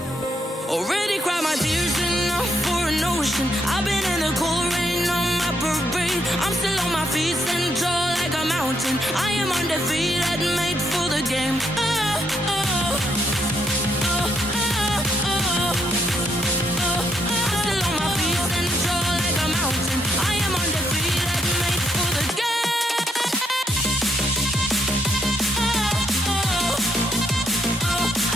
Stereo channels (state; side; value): normal; both; correlation 0.75